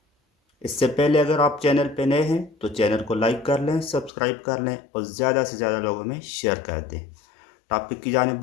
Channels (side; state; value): right; drops out; at 4.1 s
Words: इससे पहले अगर आप चैनल पे नए हैं तो चैनल को लाइक कर लें, सब्सक्राइब कर लें और ज़्यादा से ज़्यादा लोगों में शेयर कर दें। टॉपिक की जाने